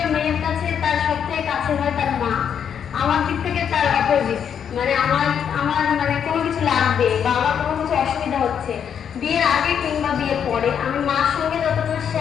মেয়ের কাছে তার সবথেকে কাছে হয় তার মা। আমার দিক থেকে তার অপোজিট, মানে আমার আমার মানে কোনো কিছু লাগবে বা আমার কোনো কিছু অসুবিধা হচ্ছে বিয়ের আগে কিংবা বিয়ের পরে, আমি মার সঙ্গে যতটা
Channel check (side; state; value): right; quieter; 8.1 dB